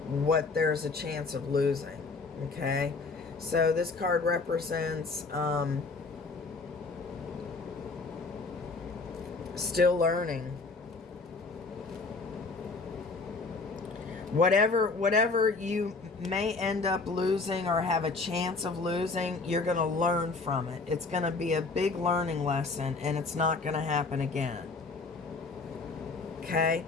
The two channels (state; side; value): quieter; right; 4.0 dB